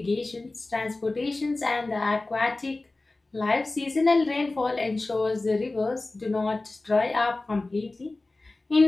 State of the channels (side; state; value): right; quieter; 3.1 dB